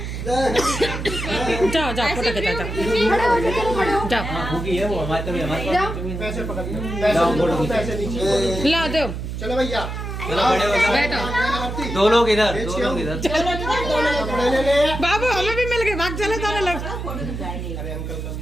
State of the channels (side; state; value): right; noise; hum, 6 dB below the sound